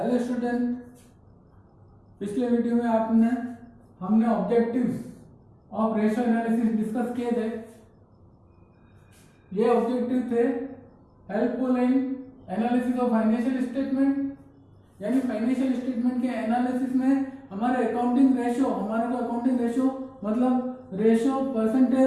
student, पिछले video में हमने objectives of ratio analysis discuss किए थे। ये ऑब्जेक्टिव थे helpful in analysis of financial statement, यानी फाइनेंशियल स्टेटमेंट के एनालिसिस में हमारे अकाउंटिंग रेशियो मतलब रेशियो,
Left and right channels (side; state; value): both; identical; correlation 1.00